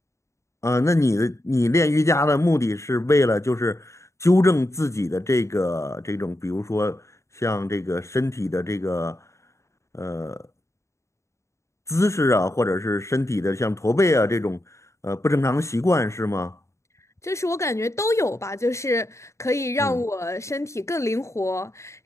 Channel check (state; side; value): late; right; 0.14 ms